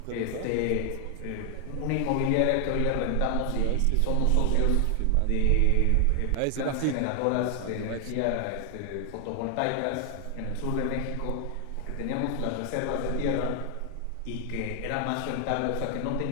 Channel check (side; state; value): both; different; correlation 0.00